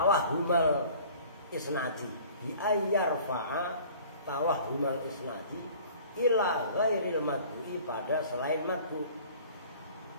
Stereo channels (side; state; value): both; inverted; correlation -0.48